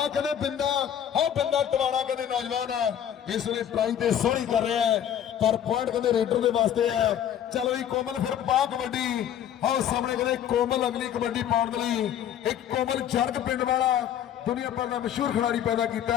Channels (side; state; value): right; quieter; 9.9 dB